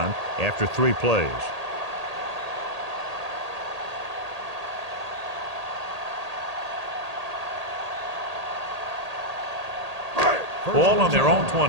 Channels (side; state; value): left; late; 1.8 ms